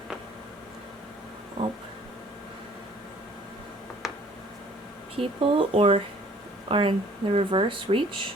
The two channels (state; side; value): normal; both; correlation 0.55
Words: Oh. People, or are in the reverse, reach,